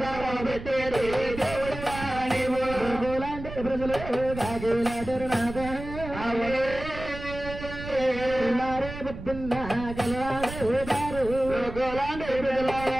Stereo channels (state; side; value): noise; right; rumble, 10 dB below the sound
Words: పెట్టేడు దేవుడు లాంటి ప్రజలు కాగేలాడరు నాద పొద్దున్న గలవాడు గోలాంటి ప్రజలు